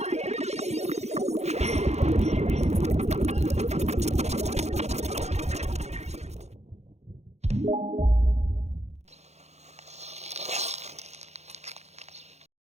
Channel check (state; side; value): late; left; 0.32 ms